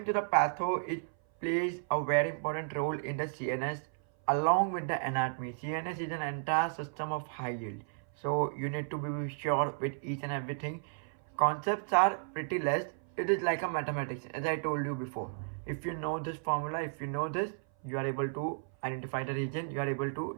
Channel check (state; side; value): silent; left; 55 dB below the other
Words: to the patho, it plays a very important role in the CNS along with the anatomy. CNS is an entire system of high yield, so you need to be sure with each and everything. Concepts are pretty less. It is like a mathematics, as I told you before. If you know this formula, if you know this, you are able to identify the region, you are able